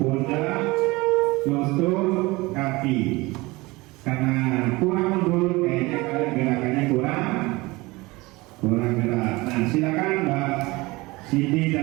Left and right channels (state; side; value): quieter; left; 22.4 dB